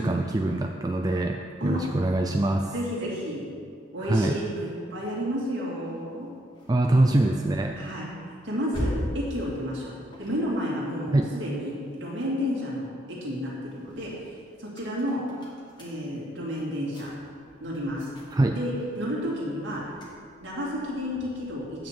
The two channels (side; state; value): both; normal; correlation 0.74